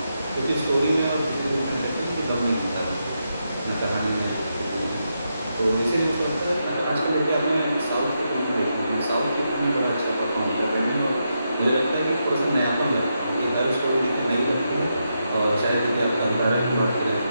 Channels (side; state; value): both; inverted; correlation -0.84